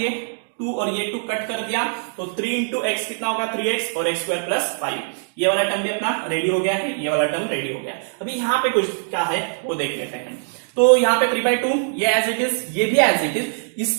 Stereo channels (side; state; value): left; silent; digital silence